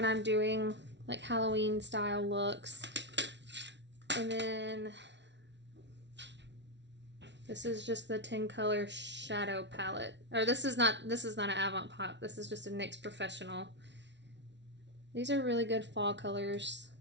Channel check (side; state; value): left; late; 0.51 ms